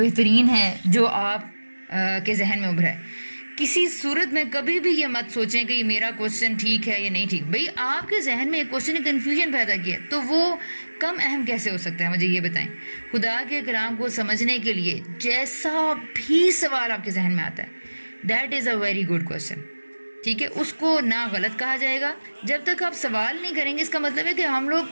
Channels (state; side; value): inverted; both; correlation -1.00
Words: بہترین ہے جو آپ کے ذہن میں ابھرا ہے۔ کسی صورت میں کبھی بھی یہ مت سوچیں کہ یہ میرا کوشچن ٹھیک ہے یا نہیں ٹھیک۔ بھئی آپ کے ذہن میں ایک کوشچن نے کنفیوژن پیدا کیا تو وہ کم اہم کیسے ہو سکتا ہے؟ مجھے یہ بتائیں۔ خدا کے کلام کو سمجھنے کے لیے جیسا بھی سوال آپ کے ذہن میں آتا ہے، that is a very good question, ٹھیک ہے؟ اس کو نہ غلط کہا جائے گا جب تک آپ سوال نہیں کریں گے۔ اس کا مطلب ہے کہ ہم لوگ